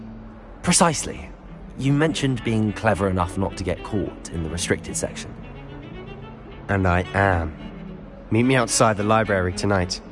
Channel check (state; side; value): identical; both; correlation 1.00